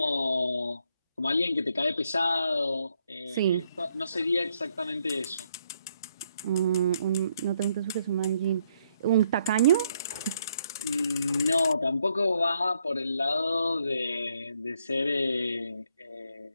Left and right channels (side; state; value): both; inverted; correlation -0.74